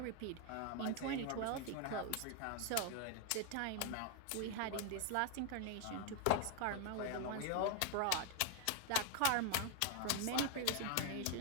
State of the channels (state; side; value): different; both; correlation 0.01